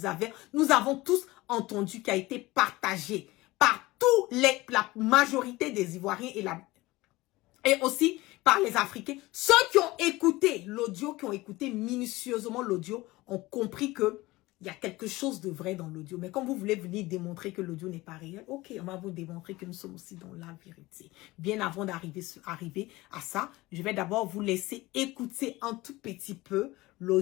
avons tous entendu, qui a été partagé par la majorité des Ivoiriens et aussi par les Africains. Ceux qui ont écouté l'audio, qui ont écouté minutieusement l'audio, ont compris que il y a quelque chose de vrai dans l'audio. Mais quand vous voulez venir démontrer que l'audio n'est pas réel, ok, on va vous démontrer que nous sommes aussi dans la vérité. Bien avant d'arriver à ça, je vais d'abord vous laisser écouter un tout petit peu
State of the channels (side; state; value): right; quieter; 20.0 dB